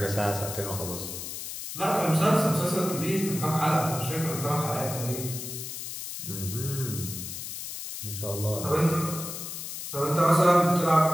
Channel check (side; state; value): left; noise; hiss, 7 dB below the sound